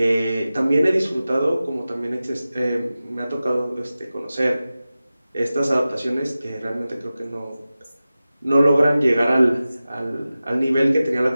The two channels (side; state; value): both; inverted; correlation -0.95